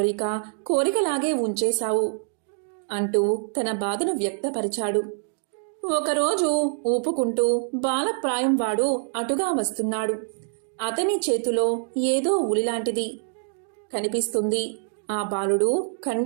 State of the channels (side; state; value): left; silent; digital silence